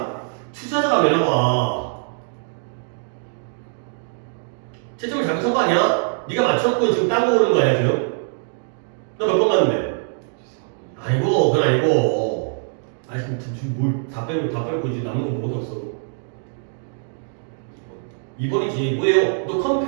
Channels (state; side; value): silent; left; 64 dB below the other